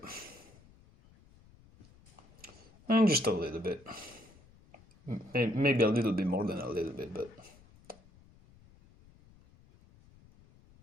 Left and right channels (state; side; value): noise; left; rumble, 26 dB below the sound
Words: And just a little bit. Maybe a little bit more than a little bit, but...